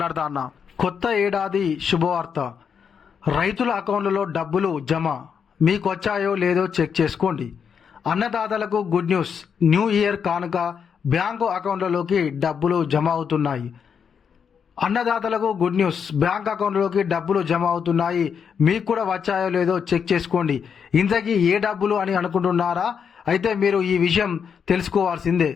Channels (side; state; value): right; quieter; 6.9 dB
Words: అన్నా. కొత్త ఏడాది శుభవార్త. రైతుల అకౌంట్లలో డబ్బులు జమ. మీకు వచ్చాయో లేదో చెక్ చేసుకోండి. అన్నదాతలకు గుడ్ న్యూస్. న్యూ ఇయర్ కానుక బ్యాంకు అకౌంట్లలోకి డబ్బులు జమ అవుతున్నాయి. అన్నదాతలకు గుడ్ న్యూస్. బ్యాంక్ అకౌంట్లోకి డబ్బులు జమ అవుతున్నాయి. మీకు కూడా వచ్చాయో లేదో చెక్ చేసుకోండి. ఇంతకీ ఏ డబ్బులు అని అనుకుంటున్నారా? అయితే మీరు ఈ విషయం తెలుసుకోవాల్సిందే.